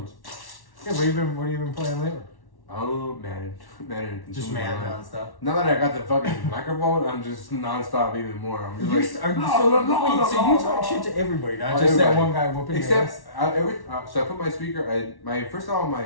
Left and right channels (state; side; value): late; right; 1.1 ms